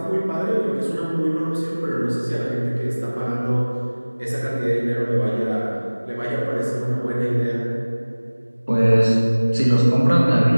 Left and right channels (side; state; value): both; inverted; correlation -1.00